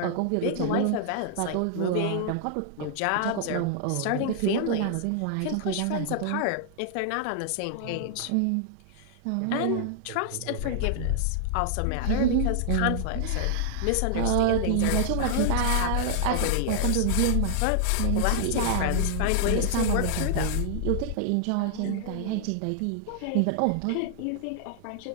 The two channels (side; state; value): both; different; correlation -0.01